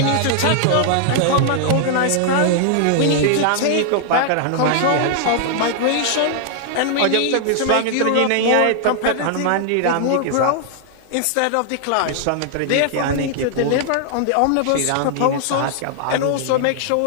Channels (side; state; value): both; different; correlation 0.00